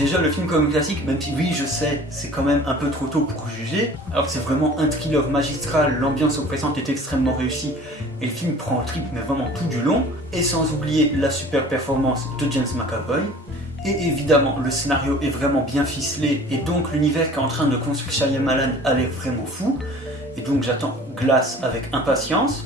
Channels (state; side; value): normal; both; correlation 0.46